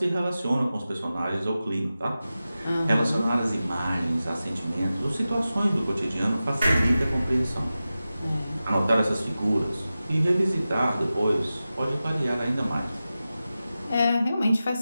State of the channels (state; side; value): inverted; both; correlation -0.94